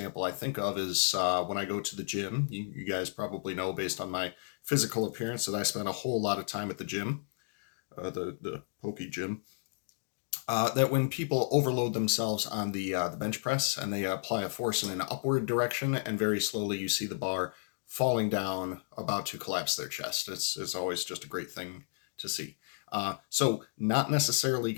I think of is when I go to the gym. You guys probably know, based on my physical appearance, that I spend a whole lot of time at the gym, the pokey gym. That when people overload themselves on the bench press and they apply a force in an upward direction, and very slowly you see the bar falling down, about to collapse their chest. It's always just a great thing to see. So not necessarily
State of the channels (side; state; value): right; silent; digital silence